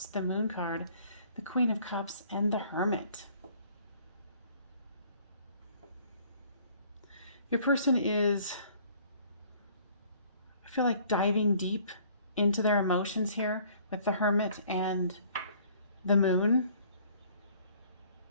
the Moon card, the Queen of Cups, and the Hermit. Your person is, I feel like, diving deep into their emotions here with the Hermit and the Moon.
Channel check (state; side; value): inverted; both; correlation -0.57